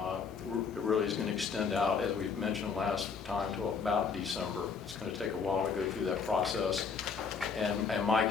really is going to extend out, as we mentioned last time, to about December. It's going to take a while to go through that process. And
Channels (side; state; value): right; quieter; 5.7 dB